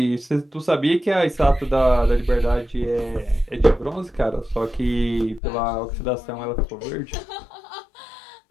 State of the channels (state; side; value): drops out; right; at 5.4 s